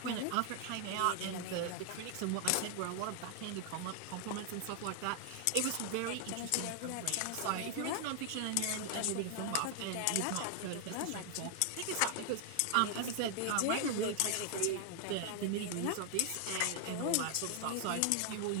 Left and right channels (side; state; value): both; different; correlation 0.00